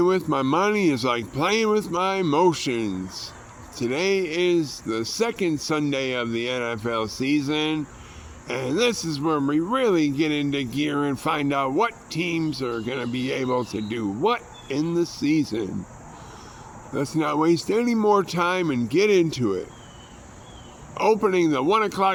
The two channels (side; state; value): both; identical; correlation 1.00